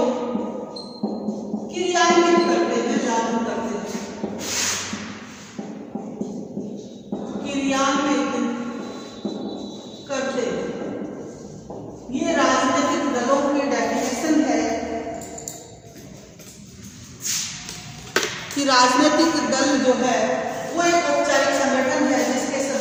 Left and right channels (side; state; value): both; identical; correlation 1.00